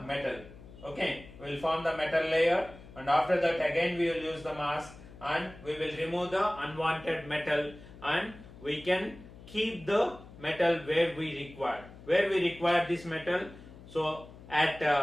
metal. Okay, we will form the metal layer, and after that again we will use the mask, and we will remove the unwanted metal, and we can keep the metal where we require this metal. So at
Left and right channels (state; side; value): noise; left; hum, 18 dB below the sound